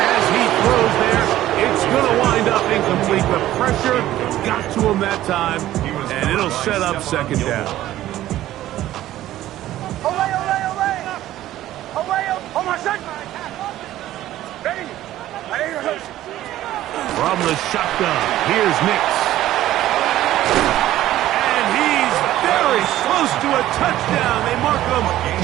he throws there. It's going to wind up incomplete. The pressure got to him that time, and it'll set up 2nd down. Away, away, away. Away, oh my son. Ready. Ready. From the shotgun, here's Nix. And he's very close to a touchdown. They mark him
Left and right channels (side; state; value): left; quieter; 14.0 dB